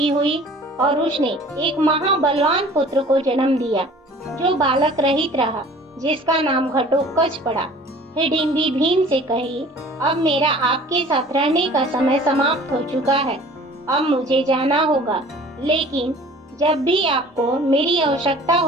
हुई और उसने एक महाबलवान पुत्र को जन्म दिया, जो बालक रहित रहा, जिसका नाम घटोत्कच पड़ा। हिडिम्बी भीम से कही, अब मेरा आपके साथ रहने का समय समाप्त हो चुका है। अब मुझे जाना होगा, लेकिन जब भी आपको मेरी आवश्यकता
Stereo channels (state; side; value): normal; both; correlation 0.48